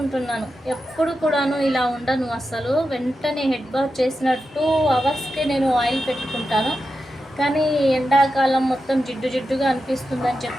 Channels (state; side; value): normal; both; correlation 0.90